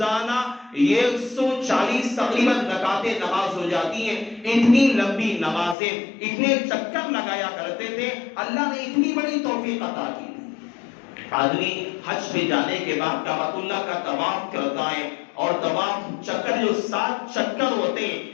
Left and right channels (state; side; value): drops out; right; at 5.8 s